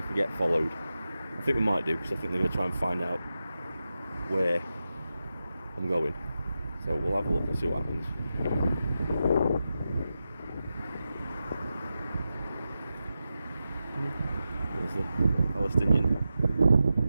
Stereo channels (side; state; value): both; inverted; correlation -0.91